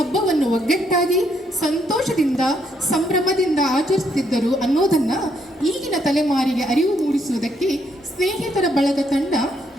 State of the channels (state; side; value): normal; both; correlation 0.73